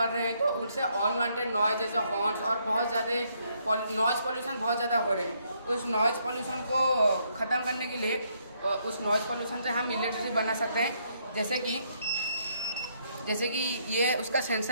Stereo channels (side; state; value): both; inverted; correlation -0.72